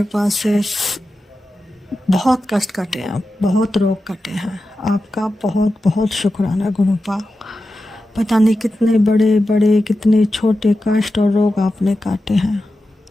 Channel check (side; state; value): both; normal; correlation 0.92